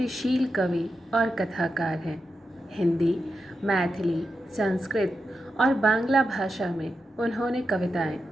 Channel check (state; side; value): normal; both; correlation 0.88